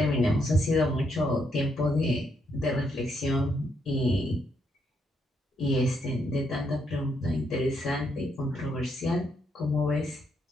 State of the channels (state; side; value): normal; both; correlation 0.76